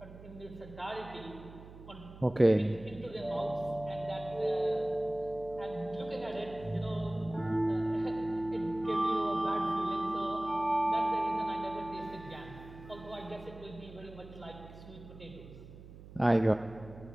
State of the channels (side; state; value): right; noise; hum, 16 dB below the sound